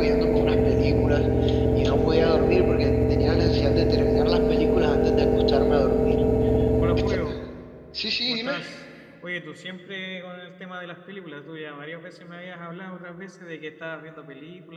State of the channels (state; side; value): identical; both; correlation 1.00